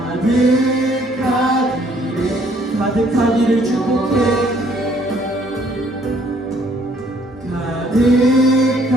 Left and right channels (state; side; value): normal; both; correlation 0.63